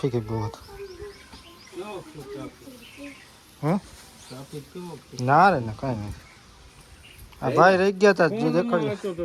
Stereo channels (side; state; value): both; identical; correlation 1.00